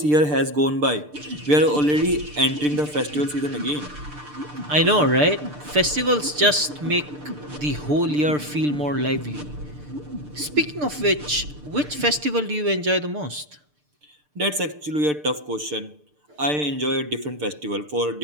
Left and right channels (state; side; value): late; left; 6.7 ms